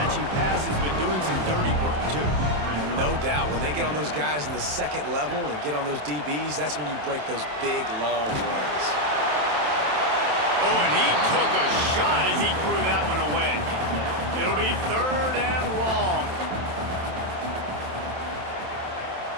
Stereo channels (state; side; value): late; left; 27 ms